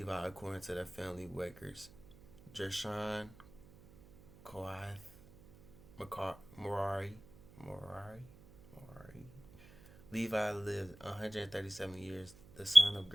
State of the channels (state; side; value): noise; right; hum, 22 dB below the sound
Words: according to their family records. Gershon, Kohath, Merari. Levi lived 137 years. The son of